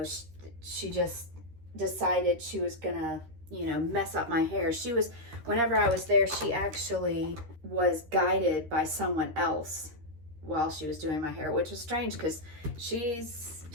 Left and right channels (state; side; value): late; left; 13 ms